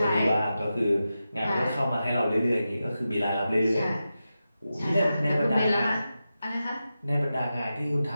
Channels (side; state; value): both; inverted; correlation -0.91